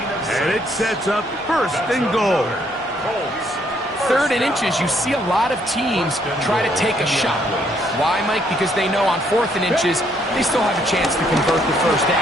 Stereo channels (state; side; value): normal; both; correlation 0.69